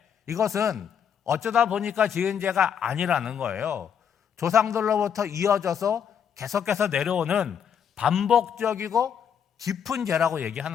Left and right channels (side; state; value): right; quieter; 8.0 dB